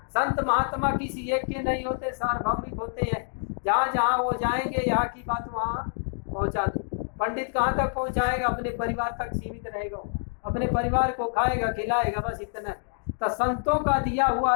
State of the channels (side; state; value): right; silent; digital silence